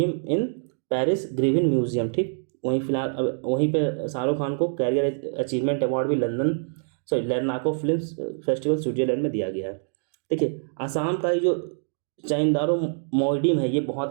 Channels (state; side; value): silent; left; digital silence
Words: in Paris Grevin museum. ठीक, वहीं पे शाहरुख खान को कैरियर अचीवमेंट अवार्ड भी लर्नाको फिल्म फेस्टिवल स्विट्जरलैंड में दिया गया है। देखिए आसाम का जो चाइंदारो मोइडिम है ये